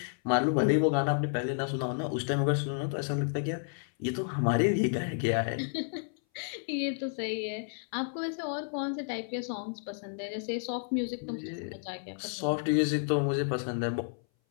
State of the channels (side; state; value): right; silent; 57 dB below the other